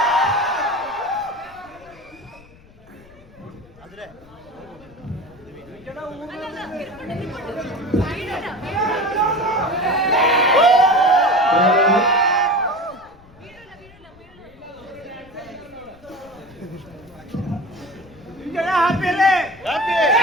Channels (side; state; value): left; noise; rumble, 25 dB below the sound